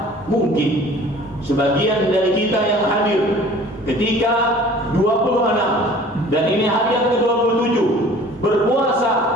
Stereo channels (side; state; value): both; normal; correlation 0.48